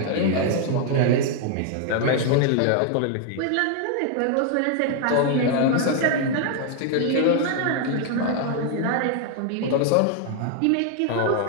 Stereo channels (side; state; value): both; different; correlation 0.00